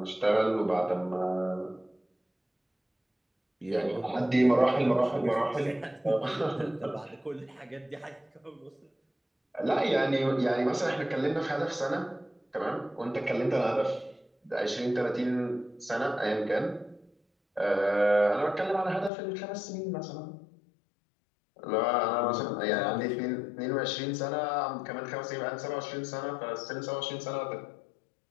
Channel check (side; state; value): right; drops out; at 19.1 s